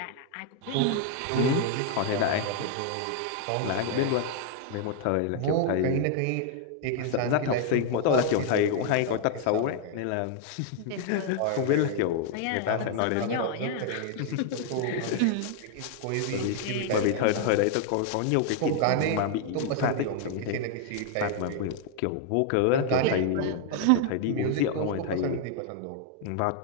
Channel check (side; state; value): both; different; correlation 0.00